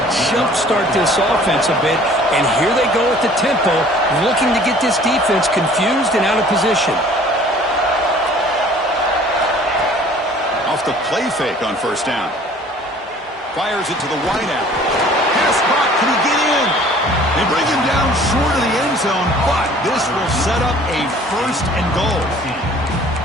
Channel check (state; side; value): normal; both; correlation 0.51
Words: jumpstart this offense a bit, and here they go at the tempo, looking to get this defense confused and out of position. Off the play fake on 1st down. Fires it to the wideout. Pass caught. Can he get in? They bring him down short of the end zone, but this will set up a 1st and goal.